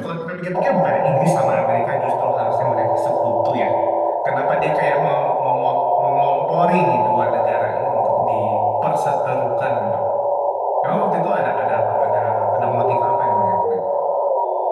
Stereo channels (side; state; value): both; identical; correlation 1.00